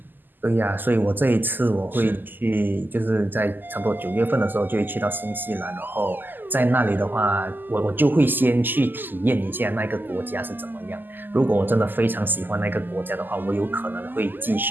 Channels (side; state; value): left; late; 0.090 ms